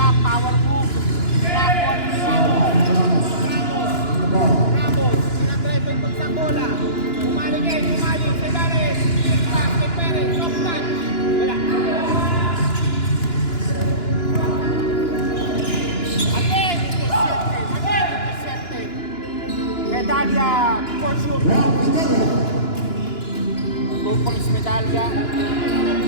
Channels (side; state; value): right; late; 2.9 ms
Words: power move. Rapon, Ramos. Sinadrive yung pagsang bola. Umali. Sa Dares. Pass kay Perez. Soft touch. Wala. Again, intercepted. Medalya for sure. 2 points medalya.